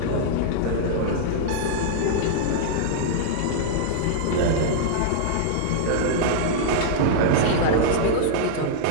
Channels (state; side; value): different; both; correlation -0.02